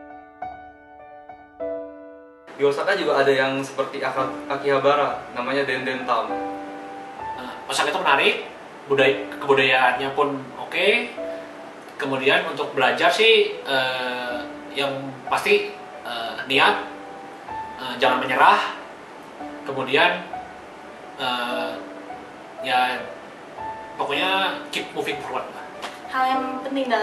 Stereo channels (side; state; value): both; identical; correlation 1.00